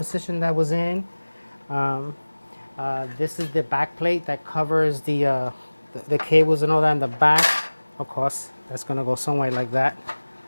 that was in. This is the back plate that covers the cables and all that in the back. Of course, that's going to go somewhere like that.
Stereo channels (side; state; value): both; inverted; correlation -1.00